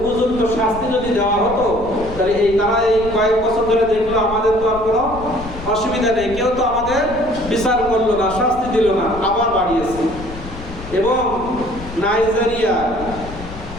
শাস্তি যদি দেওয়া হতো, তাহলে তারা এই কয়েক বছর ধরে দেখলো আমাদের তো আর কোনো অসুবিধা নেই, কেউ তো আমাদের বিচার করলো না, শাস্তি দিল না, আবার বাড়িয়েছে। এবং নাইজেরিয়া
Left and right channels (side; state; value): left; noise; rumble, 13 dB below the sound